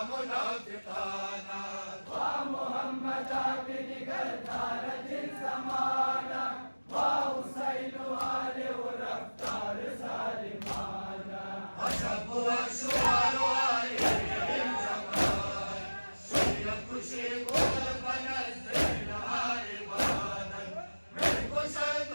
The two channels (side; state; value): both; inverted; correlation -1.00